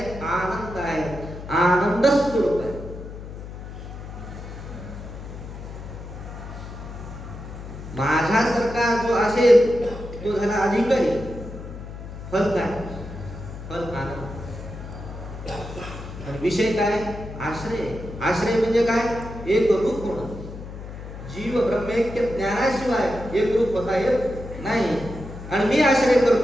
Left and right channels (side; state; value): left; noise; hum, 11 dB below the sound